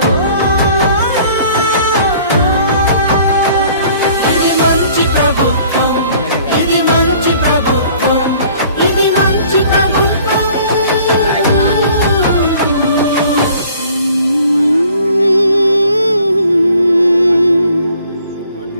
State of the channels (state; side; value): inverted; both; correlation -0.54